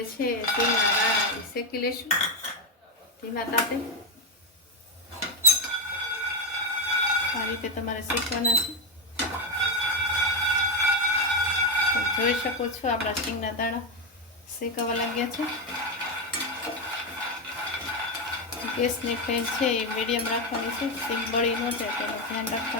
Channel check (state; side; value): normal; both; correlation 0.08